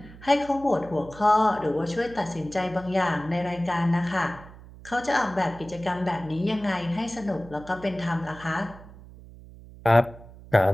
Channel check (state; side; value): noise; right; hum, 18 dB below the sound